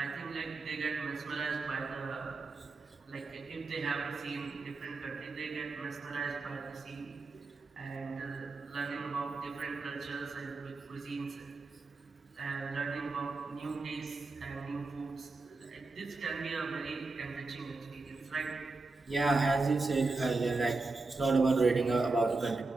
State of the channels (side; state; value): left; quieter; 3.6 dB